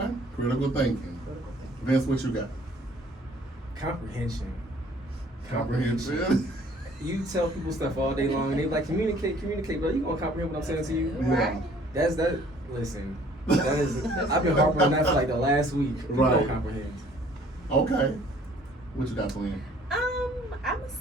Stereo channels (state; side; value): normal; both; correlation 0.57